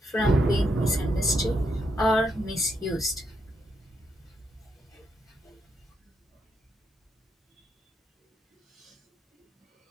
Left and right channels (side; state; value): both; normal; correlation 0.80